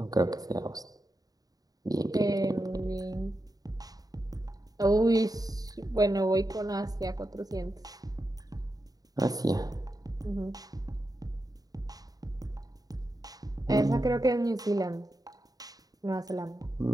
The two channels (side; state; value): left; late; 0.18 ms